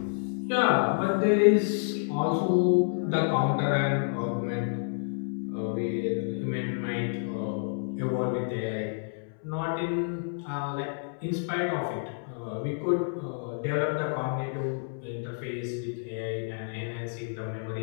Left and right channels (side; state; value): right; silent; 58 dB below the other